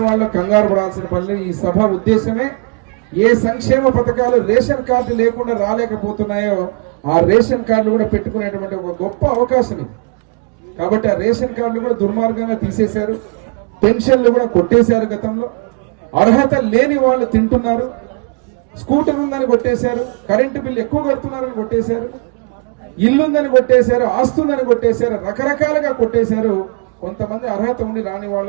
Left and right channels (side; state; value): left; quieter; 33.1 dB